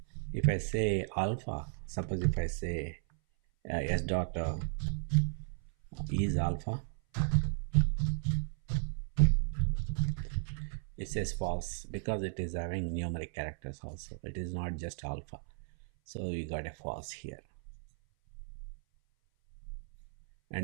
If I say alpha, suppose if I say s dot is alpha, it says false because it is having numeric characters also. It is not just alpha. So we got a false here.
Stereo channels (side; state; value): left; silent; 55 dB below the other